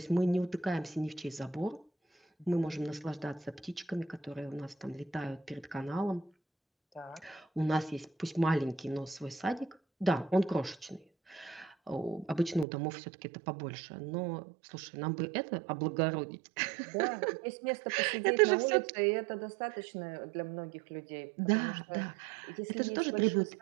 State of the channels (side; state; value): left; drops out; at 12.7 s